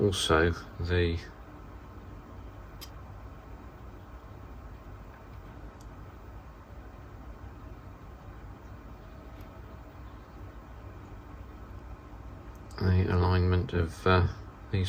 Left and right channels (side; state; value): both; identical; correlation 1.00